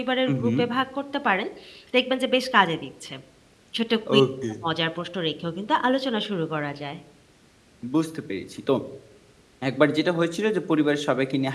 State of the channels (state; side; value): identical; both; correlation 1.00